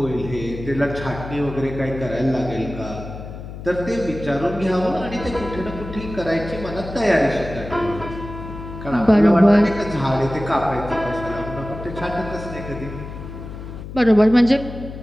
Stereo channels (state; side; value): noise; left; hum, 11 dB below the sound